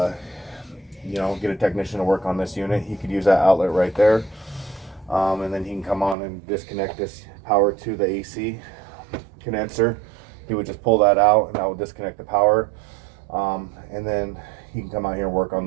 get a technician to work on this unit, he could use that outlet right there. And then he can come on and disconnect this power to the AC condenser. He would just pull that out, and that would disconnect the power. And then he can come out here and work on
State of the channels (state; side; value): drops out; left; at 6.2 s